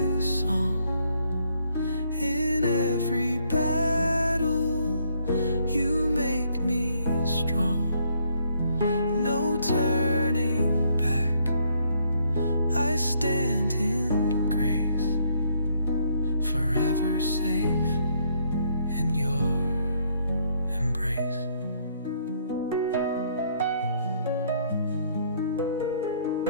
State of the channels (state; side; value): inverted; both; correlation -0.69